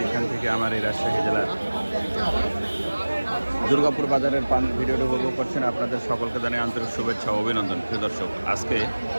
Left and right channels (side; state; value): both; inverted; correlation -1.00